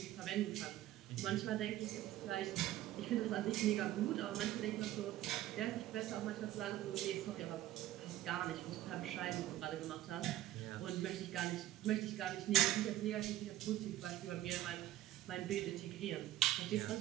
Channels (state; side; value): quieter; left; 14.2 dB